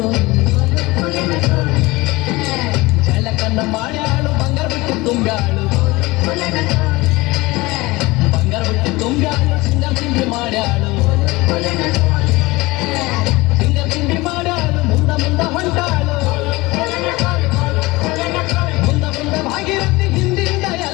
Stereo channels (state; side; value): quieter; right; 21.8 dB